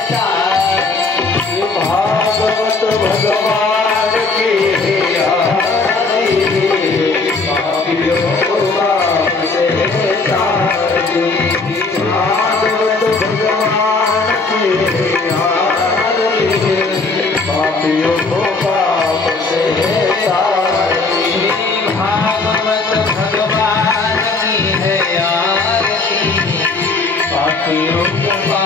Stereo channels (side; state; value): right; quieter; 3.8 dB